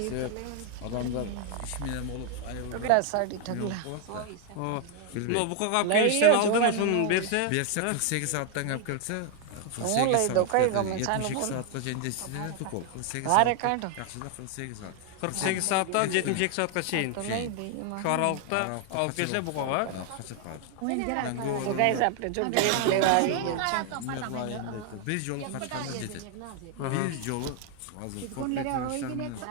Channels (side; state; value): both; different; correlation 0.01